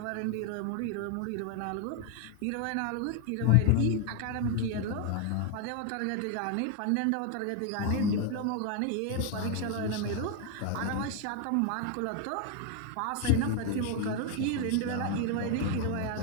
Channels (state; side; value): different; both; correlation 0.01